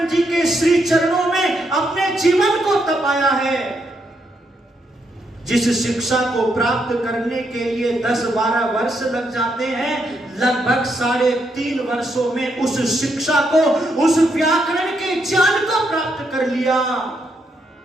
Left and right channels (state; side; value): normal; both; correlation 0.78